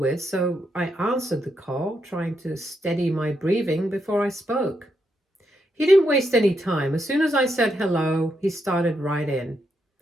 so I answered the call, trying to steady my breathing before I spoke. He didn't waste any time. As soon as I said hello, he started right in.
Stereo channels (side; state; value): both; normal; correlation 0.81